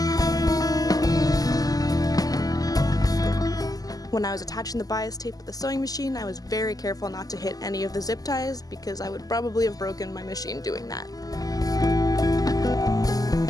When I was attaching the bias tape with the sewing machine, I was very careful not to hit any of the zip ties because I would probably have broken my machine doing that.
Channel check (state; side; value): late; right; 0.18 ms